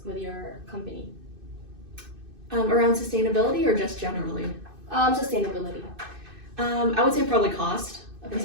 with your company? Around sustainability or just generally? Sustainability. I would say probably cost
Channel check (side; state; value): left; late; 2.6 ms